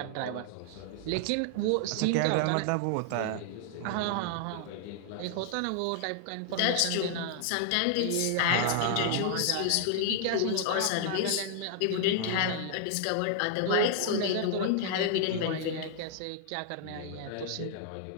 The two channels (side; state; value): both; different; correlation 0.00